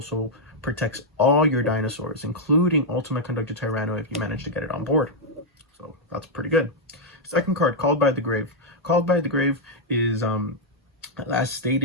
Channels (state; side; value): normal; both; correlation -0.03